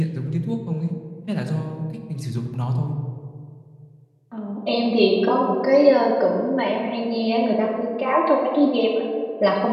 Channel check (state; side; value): identical; both; correlation 1.00